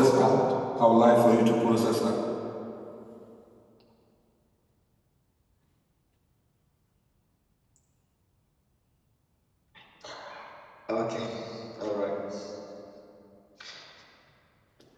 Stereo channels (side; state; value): both; identical; correlation 1.00